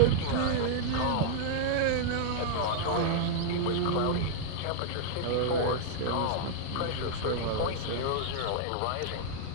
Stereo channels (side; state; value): both; different; correlation -0.01